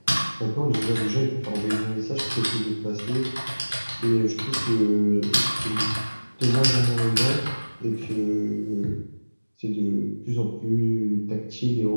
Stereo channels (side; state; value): both; inverted; correlation -1.00